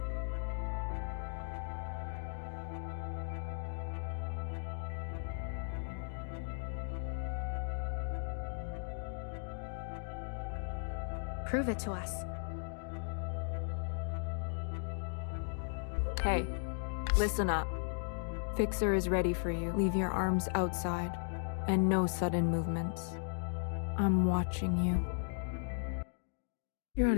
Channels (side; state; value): right; silent; digital silence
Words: Prove it to us. Hey, listen up. Fixer is ready for you. Leave your arms outside, and no sudden movements. I'm watching you. You're out